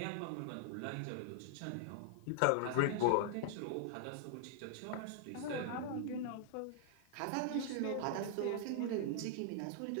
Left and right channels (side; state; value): both; different; correlation -0.01